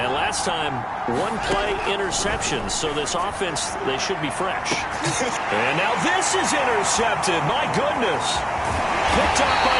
last time, 1 play interception, so this offense, they should be fresh. And now this is intercepted. My goodness. Picked up by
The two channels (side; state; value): both; identical; correlation 1.00